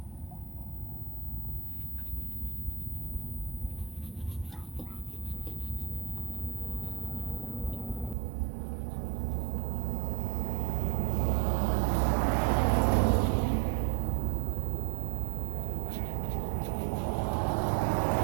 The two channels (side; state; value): left; drops out; at 8.2 s